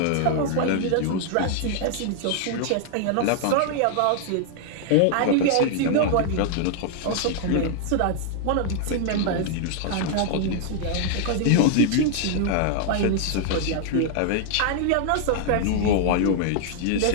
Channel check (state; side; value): different; both; correlation 0.00